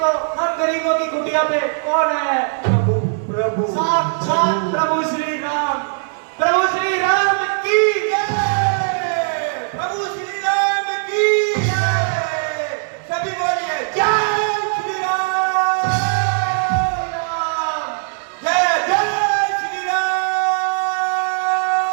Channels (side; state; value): left; silent; 66 dB below the other